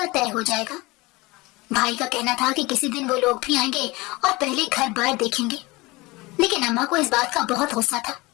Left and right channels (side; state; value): right; quieter; 22.9 dB